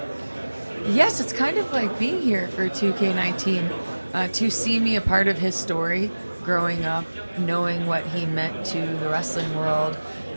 Yes, it's kind of like being here for 2K19. To see me a part of his story, growing up, knowing what he meant to the wrestling world,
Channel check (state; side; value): inverted; both; correlation -1.00